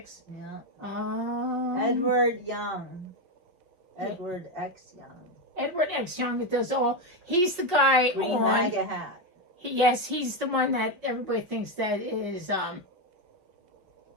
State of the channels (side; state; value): left; late; 5.3 ms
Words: Yeah. Edward Young. Edward X Young. Edward X Young that does all. He's the guy Green on. MAGA hat. Yes, he's the one that everybody thinks that is